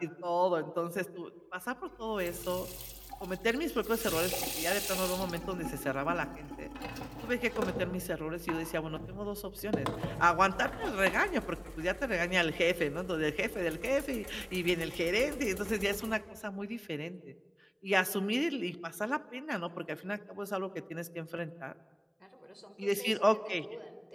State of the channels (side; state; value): both; identical; correlation 1.00